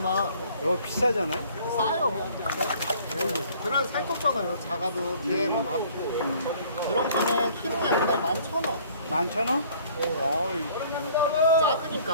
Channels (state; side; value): inverted; both; correlation -0.55